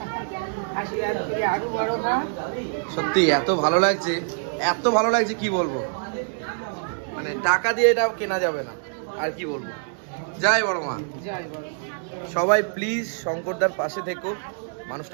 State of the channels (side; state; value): left; silent; digital silence